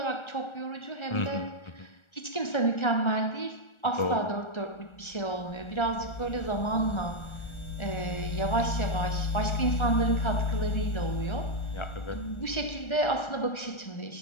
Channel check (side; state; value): right; late; 1.4 ms